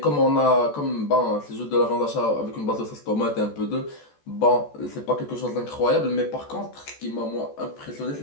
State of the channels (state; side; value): late; right; 14 ms